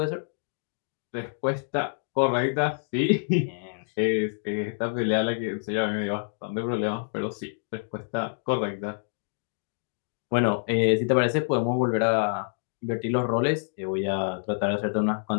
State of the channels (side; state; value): right; silent; digital silence